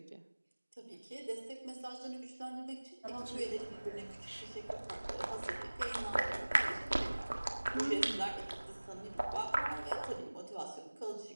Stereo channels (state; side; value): inverted; both; correlation -1.00